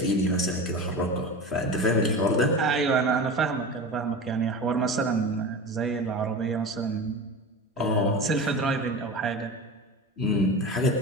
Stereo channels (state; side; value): normal; both; correlation 0.29